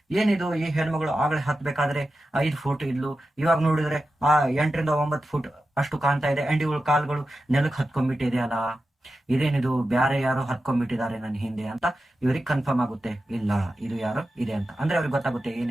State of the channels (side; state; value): both; normal; correlation 0.92